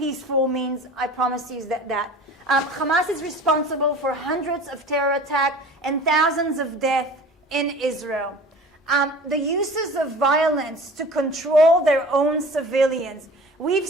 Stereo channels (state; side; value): normal; both; correlation 0.41